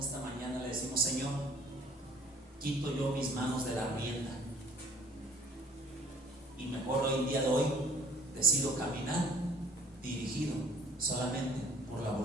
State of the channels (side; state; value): both; normal; correlation 0.53